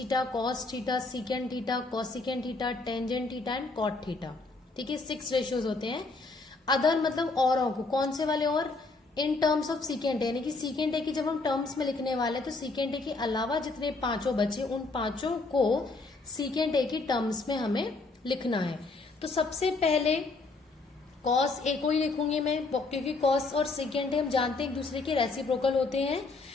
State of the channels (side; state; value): right; quieter; 3.6 dB